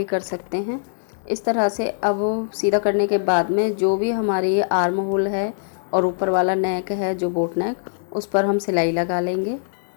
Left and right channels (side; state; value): right; silent; 60 dB below the other